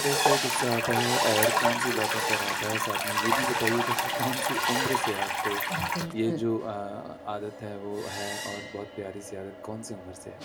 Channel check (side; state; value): both; identical; correlation 1.00